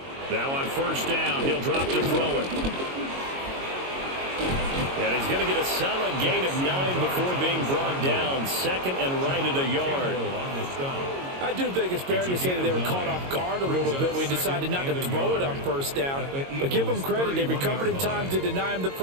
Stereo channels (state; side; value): late; left; 22 ms